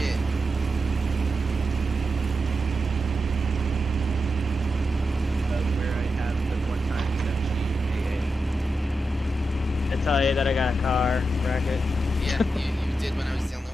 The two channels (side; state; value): both; normal; correlation 0.88